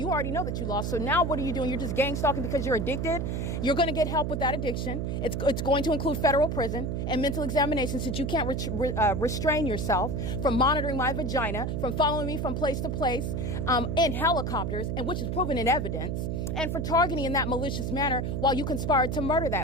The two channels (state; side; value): noise; right; hum, 1 dB below the sound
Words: already know that you lost. So now what are you doing? You're just gang stalking because you're addicted. You're going to get help with that addiction. It's going to include federal prison and mental examination, since you can't restrain yourself from monitoring my vagina, from following me from place to place in helicopters, and which is proven in evidence, and for targeting in that malicious manner while you conspired to murder